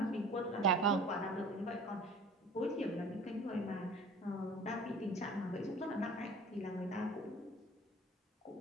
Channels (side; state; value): both; normal; correlation 0.45